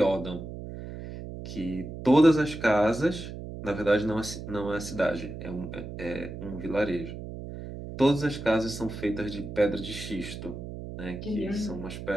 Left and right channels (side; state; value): right; noise; hum, 9 dB below the sound